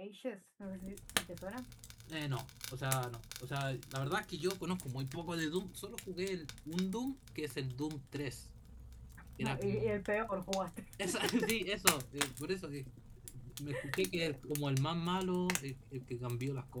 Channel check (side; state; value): both; identical; correlation 1.00